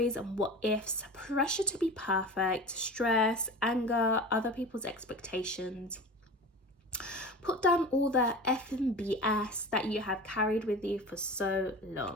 and what ifs, pressure to be perfect, stress, anger, other people's expectations. Put down all the effing BS that you have carried with you for so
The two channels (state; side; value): normal; both; correlation 0.33